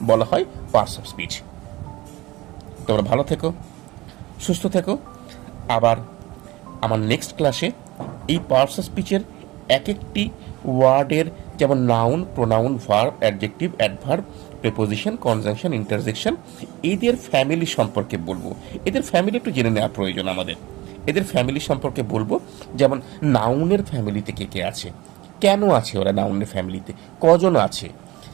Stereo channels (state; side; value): quieter; left; 19.7 dB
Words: বলা হয় পার্টস অফ স্পিচ। তোমরা ভালো থেকো, সুস্থ থেকো। আবার আমার নেক্সট ক্লাসে এই পার্টস অফ স্পিচের এক একটি ওয়ার্ডের, যেমন noun, pronoun, verb, adjective, adverb, preposition, conjunction, interjection, এদের ফ্যামিলি সম্পর্কে বলবো। এদের ফ্যামিলি একটু জেনে নেওয়া প্রয়োজন আমাদের। এদের ফ্যামিলি সম্পর্কে বলবো, যেমন নাউনের ফ্যামিলিতে কে কে আছে, কেন আছে ওরা নাউনের ফ্যামিলিতে, কজন আছে।